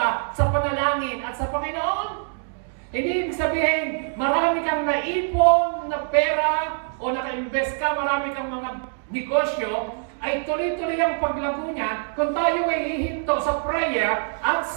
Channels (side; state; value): left; silent; digital silence